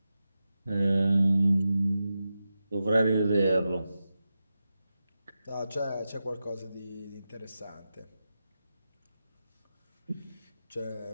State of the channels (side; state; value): both; inverted; correlation -0.91